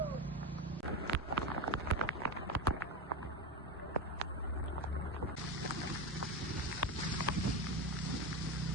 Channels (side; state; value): both; normal; correlation 0.18